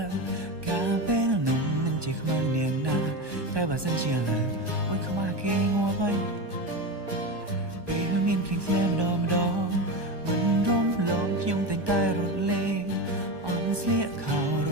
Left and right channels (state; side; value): late; left; 1.2 ms